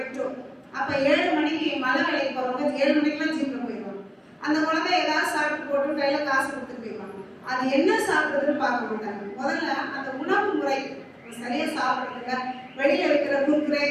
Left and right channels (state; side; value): identical; both; correlation 1.00